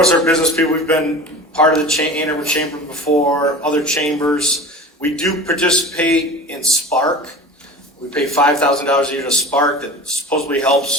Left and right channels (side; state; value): both; normal; correlation 0.35